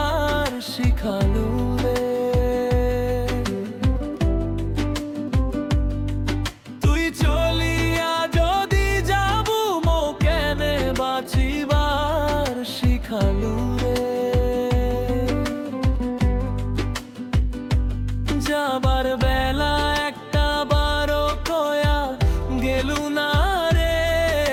শিখালু রে। তুই চলিয়া যদি যাবু মো কেনে বাঁচিবার শিখালু রে। যাবার বেলা একটা বারো কয়া গেলু না রে।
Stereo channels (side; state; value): both; identical; correlation 1.00